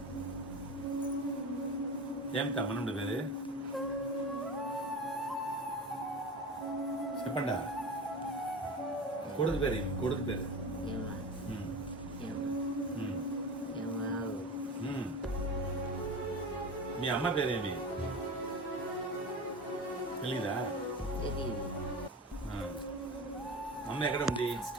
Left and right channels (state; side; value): normal; both; correlation 0.30